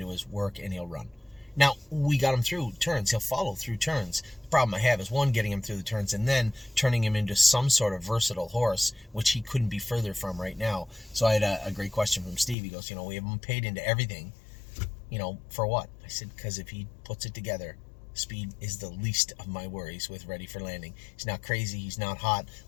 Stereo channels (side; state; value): right; drops out; at 12.6 s